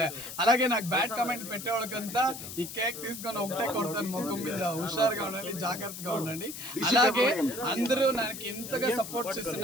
day. అలాగే నాకు బ్యాడ్ కామెంట్ పెట్టే వాళ్ళకంతా ఈ కేక్ తీసుకొని ఒకటే కొడతాను ముఖం మీద. హుషారుగా ఉండండి, జాగ్రత్తగా ఉండండి. అలాగే అందరూ నాకు ఇంతగా సపోర్ట్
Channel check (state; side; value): noise; left; hiss, 10 dB below the sound